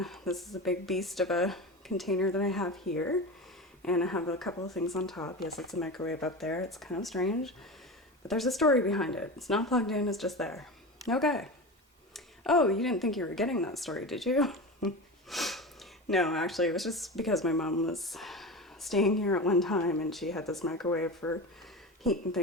is a big beast of a container that I have here. And I have a couple of things on top. Yes, it's a microwave up there. It's kind of strange, but there's a story behind it. It's not plugged in, it's just there. Okay. Oh, you didn't think you were getting that story, did you? No, actually, it was just because my mom was staying here at one time and she had this microwave for heating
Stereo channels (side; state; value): both; normal; correlation 0.26